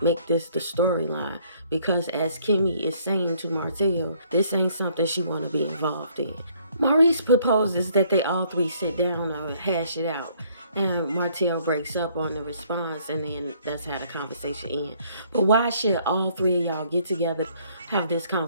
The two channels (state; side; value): inverted; both; correlation -0.63